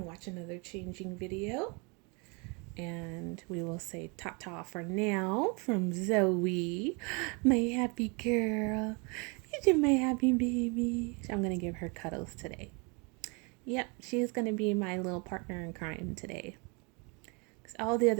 watch another changing video. And we will say ta-ta for now from Zoey, my happy girl. You're my happy baby. I'm going to give her cuddles today. Yep, she's going to be my little partner in crime today. Because all the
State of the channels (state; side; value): quieter; left; 31.4 dB